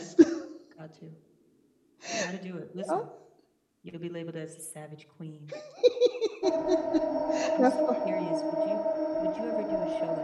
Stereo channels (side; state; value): both; identical; correlation 1.00